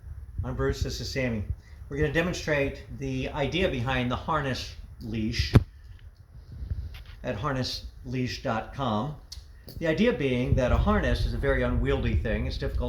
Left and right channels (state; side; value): identical; both; correlation 1.00